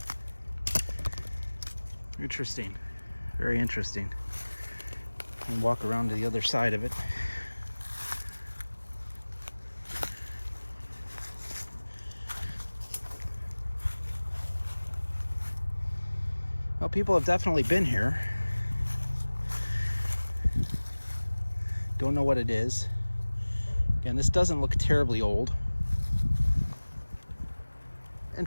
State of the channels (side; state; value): both; inverted; correlation -1.00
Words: Interesting. Very interesting. And walk around to the other side of it. Well, people have definitely been here. Don't know what it is. Again, this doesn't look terribly old.